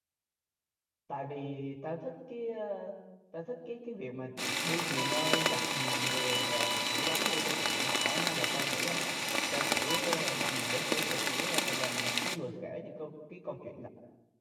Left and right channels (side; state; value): both; identical; correlation 1.00